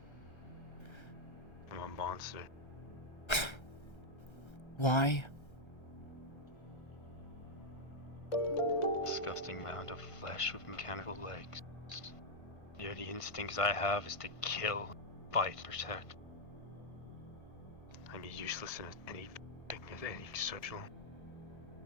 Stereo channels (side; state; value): right; late; 1.3 ms